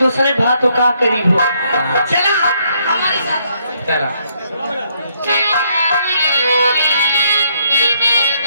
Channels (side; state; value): both; inverted; correlation -0.71